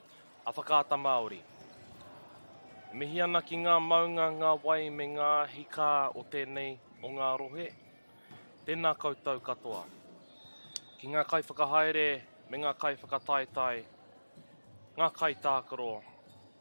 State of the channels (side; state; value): both; inverted; correlation -1.00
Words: a whakaata Māori. Mihi ana ki ngā maunga, ngā wai me ngā hika o tēnei o ngā rohe. Tēnā koutou katoa. Ki ngā kai whakahaere me ngā kai whakataetai, ngā kai tākaro,